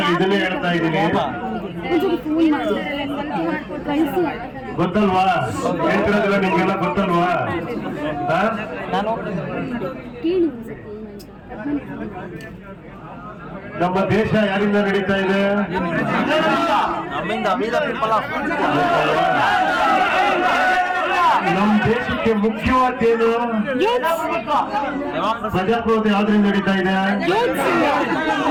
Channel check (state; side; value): identical; both; correlation 1.00